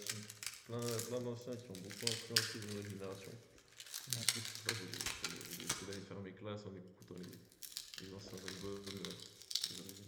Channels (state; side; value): identical; both; correlation 1.00